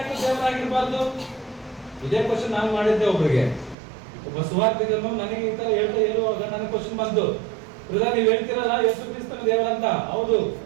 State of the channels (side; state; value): left; drops out; at 3.8 s